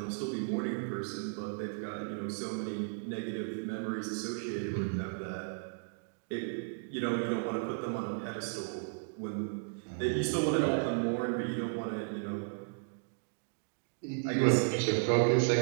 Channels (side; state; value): left; silent; digital silence